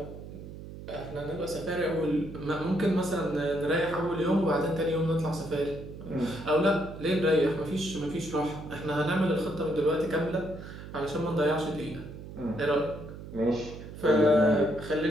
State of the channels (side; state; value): right; noise; hum, 12 dB below the sound